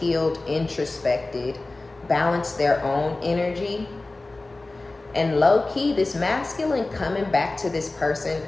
introspected, balanced their own energy. And low-key, this masculine coming back to this person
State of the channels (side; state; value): right; quieter; 3.1 dB